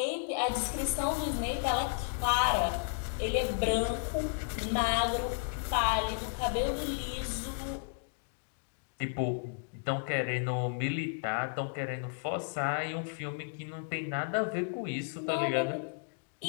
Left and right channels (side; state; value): right; silent; digital silence